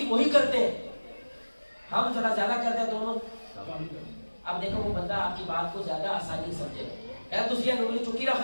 وہی کرتے ہیں. ہم تھوڑا زیادہ کرتے ہیں دونوں. اب دیکھو وہ بندہ آپ کی بات کو زیادہ آسانی سمجھے گا. تسی انگلی چکی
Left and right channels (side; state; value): both; inverted; correlation -1.00